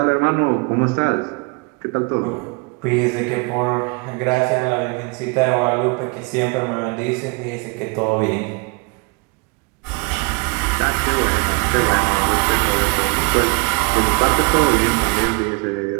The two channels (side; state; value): left; quieter; 30.3 dB